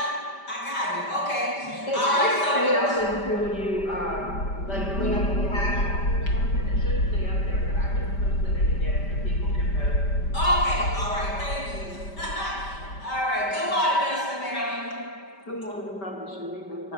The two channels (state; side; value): late; right; 5.1 ms